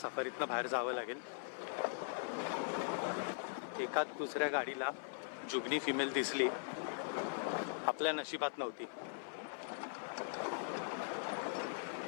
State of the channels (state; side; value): silent; right; 50 dB below the other